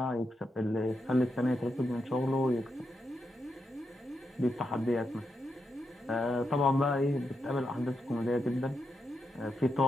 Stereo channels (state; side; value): normal; both; correlation 0.84